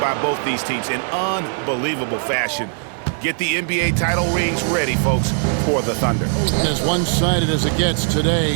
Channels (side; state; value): left; silent; digital silence